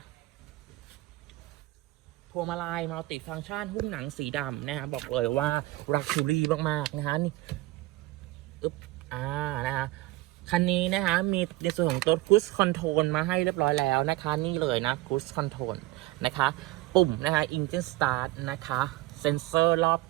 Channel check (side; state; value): left; quieter; 18.1 dB